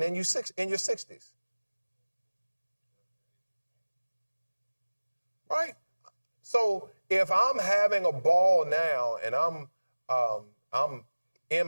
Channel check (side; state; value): both; inverted; correlation -1.00